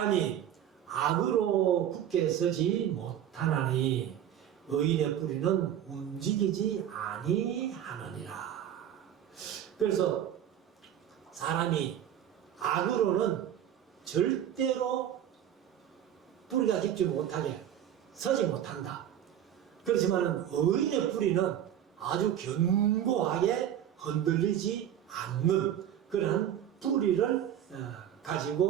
악으로 굳게 서지 못하나니 의인의 뿌리는 움직이지 아니하느니라. 그래서 사람이 악으로는 절대로 뿌리가 깊지 못하게 서지 못한다. 그렇지만 의인의 뿌리는 아주 견고하게 흔들리지 않는 그런 뿌리를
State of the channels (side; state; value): left; quieter; 10.4 dB